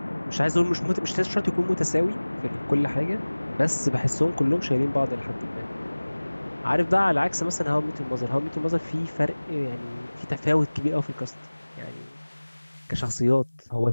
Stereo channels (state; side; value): inverted; both; correlation -1.00